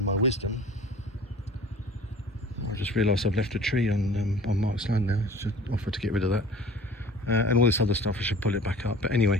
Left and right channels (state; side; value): normal; both; correlation 0.45